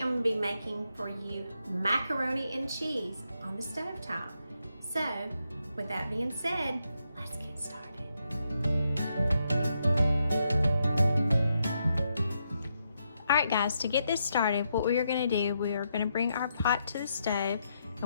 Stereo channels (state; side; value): inverted; both; correlation -0.81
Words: going to be making for you macaroni and cheese on the stovetop. So, with that being said, let's get started. Alright guys, to get this started, what we are going to do, we are going to bring our pot to the stove,